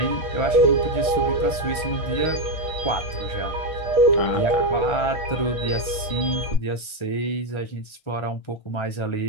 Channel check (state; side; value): late; right; 1.3 ms